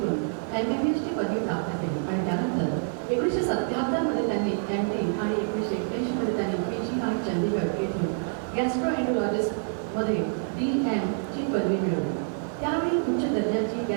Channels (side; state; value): left; silent; digital silence